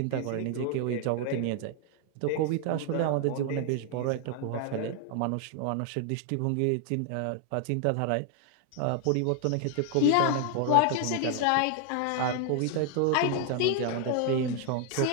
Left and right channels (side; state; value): both; different; correlation 0.00